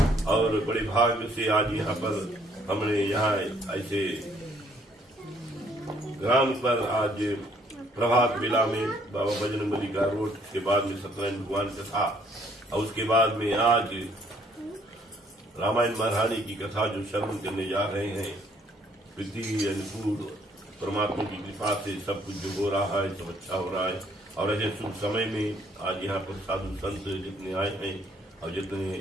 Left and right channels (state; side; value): normal; both; correlation 0.65